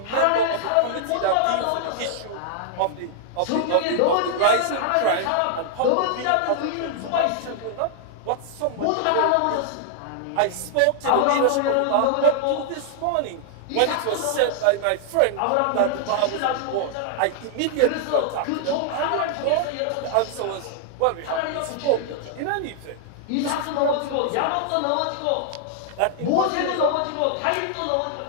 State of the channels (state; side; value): different; both; correlation -0.01